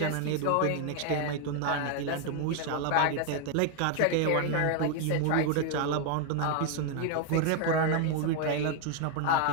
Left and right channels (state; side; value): different; both; correlation 0.01